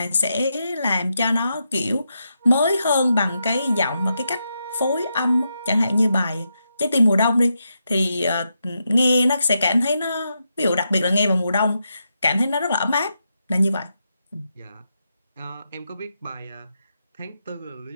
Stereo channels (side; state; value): both; inverted; correlation -0.84